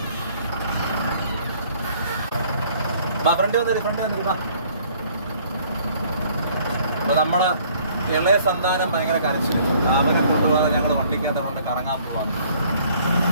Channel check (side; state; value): both; inverted; correlation -0.59